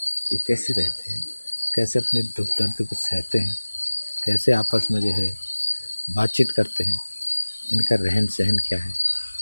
ये कैसे रहते हैं, कैसे अपने दुख दर्द को सहते हैं, कैसे आपस में जो है बातचीत करते हैं, इनका रहन सहन क्या है।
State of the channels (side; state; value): both; inverted; correlation -1.00